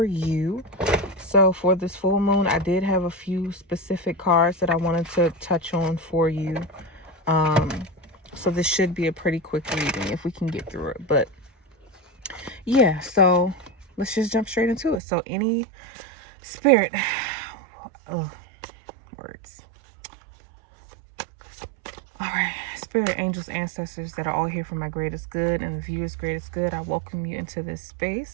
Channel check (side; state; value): left; drops out; at 15.0 s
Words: you. So for this full moon, I did have a few specific cards that I wanted to touch on for you. So this should be a pretty quick reading if we can get through it. But yeah, so let's just jump straight into it. So any spirit, oh, words. All right, spirit, angels, ancestors that are all here for my greatest good and the viewer's greatest good, I welcome you into this